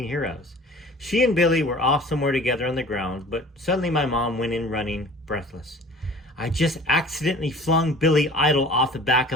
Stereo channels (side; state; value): both; normal; correlation 0.45